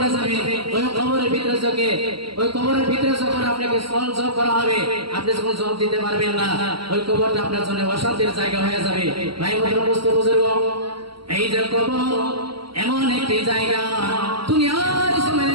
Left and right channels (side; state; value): left; late; 0.74 ms